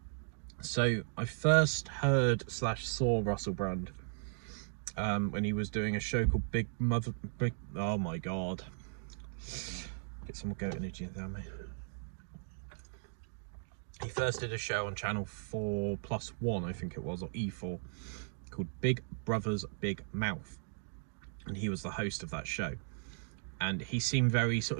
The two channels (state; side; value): silent; left; digital silence